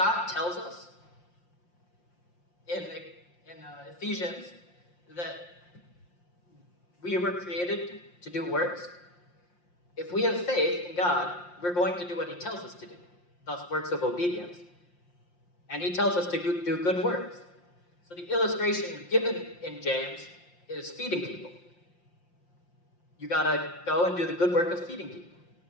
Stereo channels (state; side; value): late; right; 5.7 ms